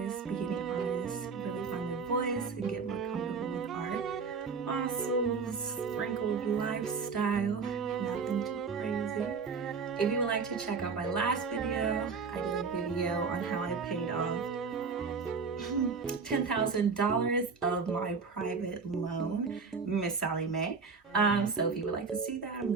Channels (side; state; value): left; quieter; 5.1 dB